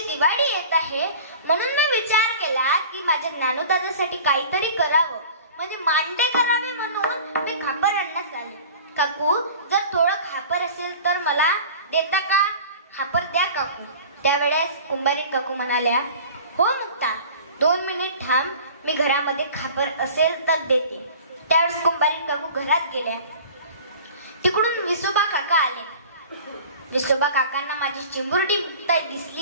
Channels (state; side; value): inverted; both; correlation -0.41